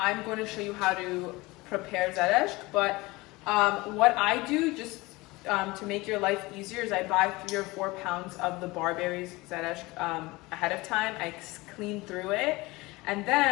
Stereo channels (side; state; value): right; quieter; 22.1 dB